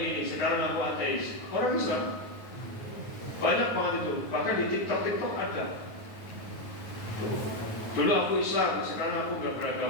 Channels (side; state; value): right; late; 9.4 ms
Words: sekarang aku ateis. Orang Islam banyak banget itu. Bahkan di TikTok ada. Dulu aku Islam, sekarang aku nggak